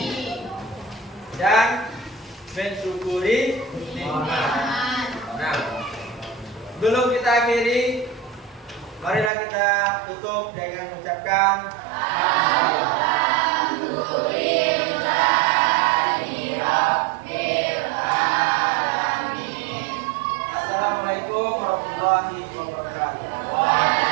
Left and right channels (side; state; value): left; drops out; at 9.3 s